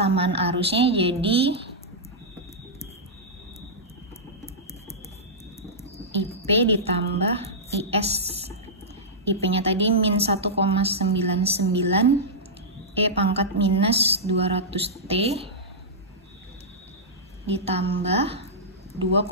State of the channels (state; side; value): normal; both; correlation -0.13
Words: arusnya jadi IP ditambah IS. IP-nya tadi min 1,99, E pangkat minus 200T ditambah